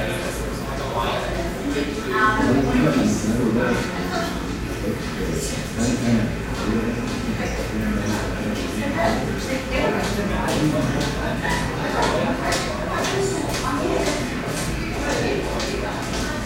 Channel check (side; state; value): both; identical; correlation 1.00